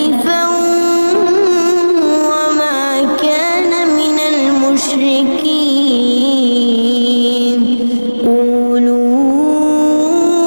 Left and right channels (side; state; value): both; inverted; correlation -1.00